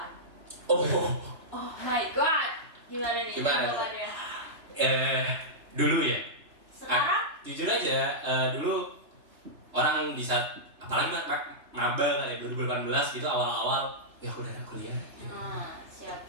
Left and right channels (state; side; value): late; left; 3.1 ms